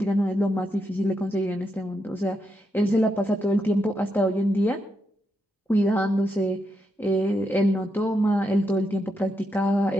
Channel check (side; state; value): both; normal; correlation 0.83